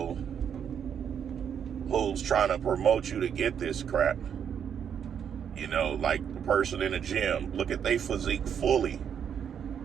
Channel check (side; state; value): left; quieter; 8.1 dB